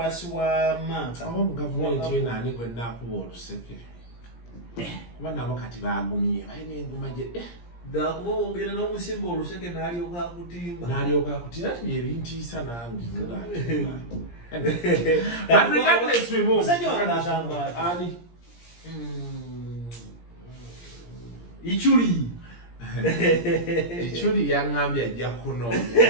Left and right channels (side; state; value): right; late; 17 ms